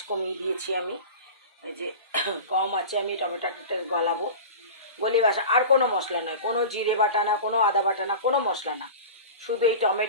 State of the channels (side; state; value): both; inverted; correlation -0.33